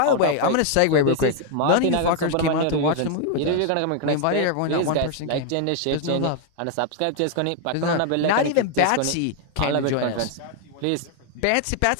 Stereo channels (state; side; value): different; both; correlation 0.00